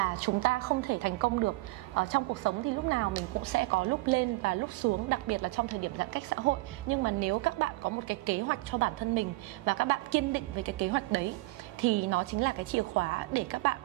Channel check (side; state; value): left; quieter; 21.7 dB